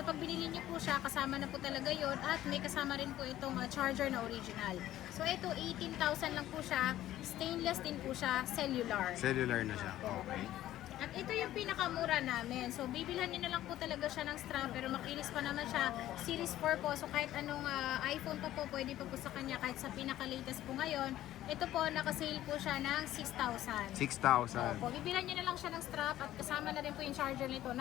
pag binili niyo po siya kasama na po talaga yon at may kasama rin po itong charger na original. So ito 18,000 lang po siya. Stainless din po siya. Cellular. Cellular na siya. Okay. At ito yung pinakamura namin. So, bibilhan niyo na lang po talaga siya ng strap pero makinis pa naman siya. Series 4 po. So, kahit anong iPhone pa po, pwede pa po sa kanya. Kahit sa pinaka-latest po ngayon. Ito po, nakasale po siya ng 6,000. 6,000. Opo, bibilhan niyo na lang siya ng strap at kasama na rin po yung charger nito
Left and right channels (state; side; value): quieter; right; 13.6 dB